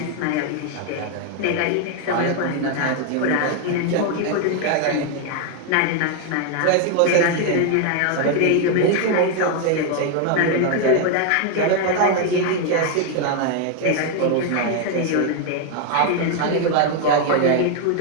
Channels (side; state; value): both; different; correlation 0.01